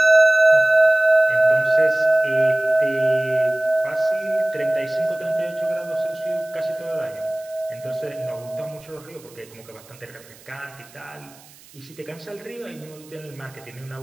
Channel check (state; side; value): noise; right; hiss, 24 dB below the sound